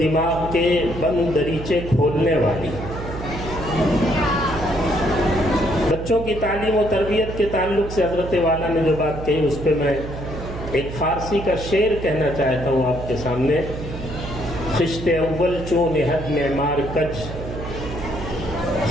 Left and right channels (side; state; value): right; noise; hum, 9 dB below the sound